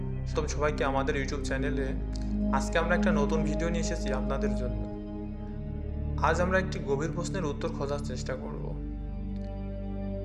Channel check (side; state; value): both; identical; correlation 1.00